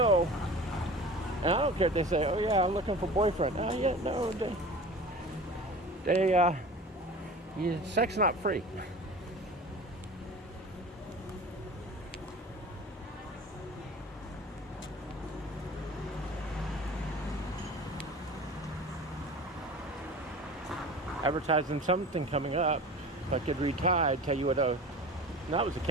and I don't care if they say, oh yeah, I'm looking for a boyfriend. Oh yeah, no, yeah, sex not free. Advertising something coming up. If I could retire, I'd tell you what. That was a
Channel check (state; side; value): normal; both; correlation 0.38